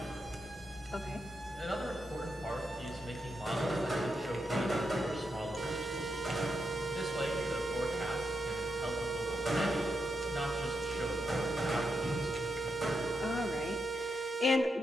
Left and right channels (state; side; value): normal; both; correlation 0.83